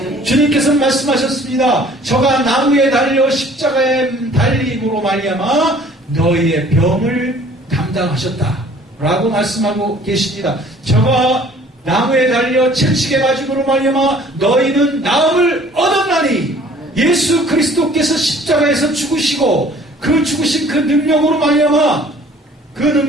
주님께서 말씀하셨습니다. 저가 나무에 달려 십자가에 달림으로 말미암아 너희의 병을 담당하셨다 라고 말씀하고 계십니다. 저가 나무에 달려 채찍에 맞음으로 말미암아 너희는 나음을 얻었나니 예수 그리스도께서 십자가에서 죽으시고 그 죽으신 그 능력으로 말미암아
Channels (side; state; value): both; normal; correlation 0.53